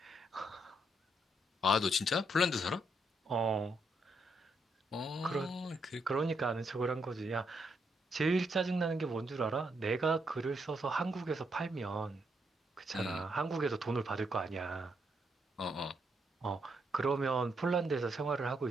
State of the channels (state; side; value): normal; both; correlation 0.77